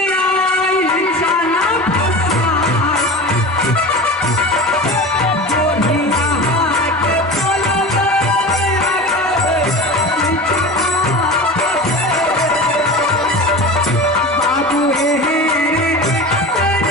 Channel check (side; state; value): both; normal; correlation 0.31